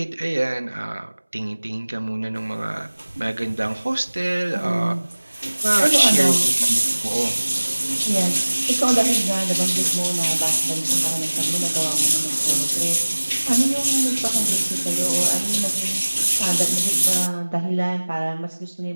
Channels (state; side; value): inverted; both; correlation -1.00